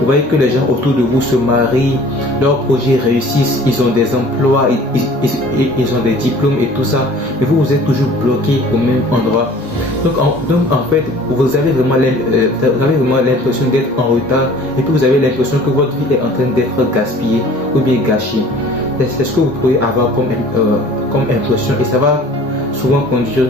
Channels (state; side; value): normal; both; correlation 0.48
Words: voyez que les gens autour de vous se marient, leurs projets réussissent, ils ont des emplois, ils ont des diplômes et tout ça. Mais vous êtes toujours bloqué au même endroit. Donc en fait, vous avez vraiment l'impression d'être en retard et puis vous avez l'impression que votre vie est en train d'être gaspillée ou bien gâchée. C'est ce que vous pouvez avoir comme impression et ça va souvent conduire